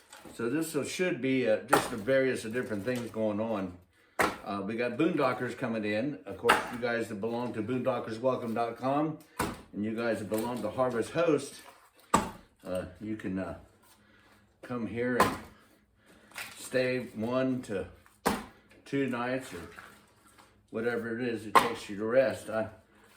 So this should be just the various different things going on. We got boondockers coming in. Of course, you guys that belong to boondockerswelcome.com and you guys that belong to Harvest Host, you can come here and stay 1 to 2 nights or whatever it is it takes you to rest.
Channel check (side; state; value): both; identical; correlation 1.00